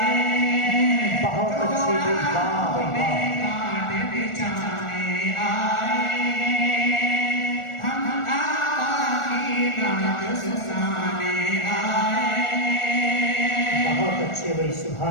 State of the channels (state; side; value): late; right; 1.4 ms